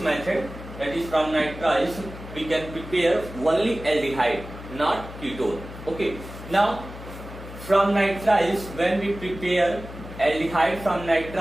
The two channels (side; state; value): left; noise; hum, 13 dB below the sound